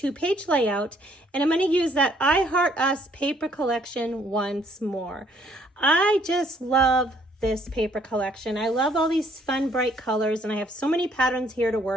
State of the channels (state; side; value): normal; both; correlation 0.65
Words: layout and I'm going to use that I Heart Us paper collection once more. I just love this paper collection. I love all these fun bright colors and I have so many patterns here to